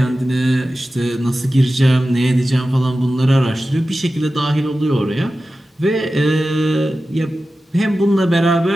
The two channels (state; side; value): normal; both; correlation 0.94